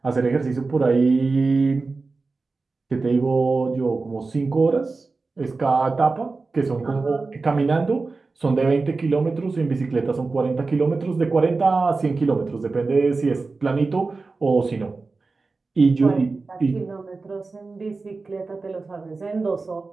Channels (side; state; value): left; quieter; 3.9 dB